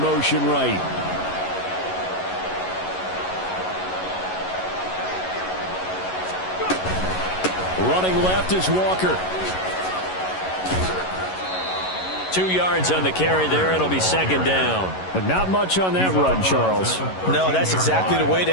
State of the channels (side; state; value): right; late; 11 ms